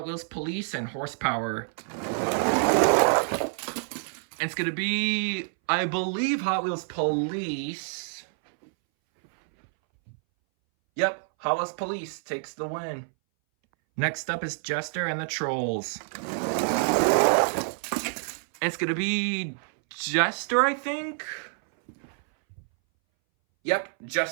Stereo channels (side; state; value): left; silent; 60 dB below the other